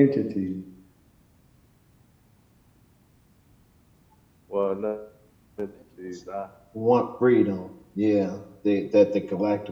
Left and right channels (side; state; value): both; identical; correlation 1.00